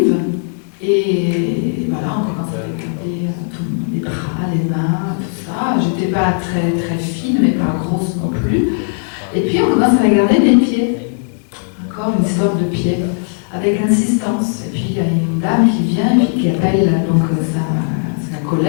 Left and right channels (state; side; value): silent; right; digital silence